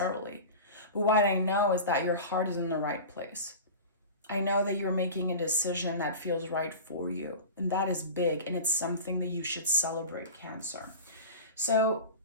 But what I know is that your heart is in the right place. I know that you're making a decision that feels right for you. And that is big. And it's something that you should celebrate, Cancer. So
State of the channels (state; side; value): inverted; both; correlation -0.33